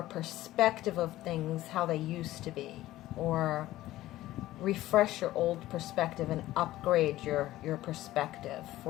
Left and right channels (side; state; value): right; quieter; 15.6 dB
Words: perspective of things how they used to be, or refresh your old perspective and upgrade your perspective